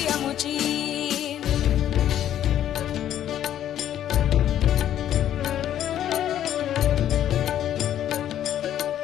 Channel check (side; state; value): right; quieter; 11.0 dB